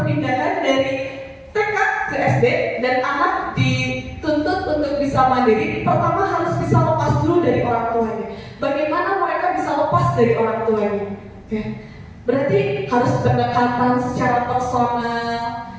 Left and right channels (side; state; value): both; identical; correlation 1.00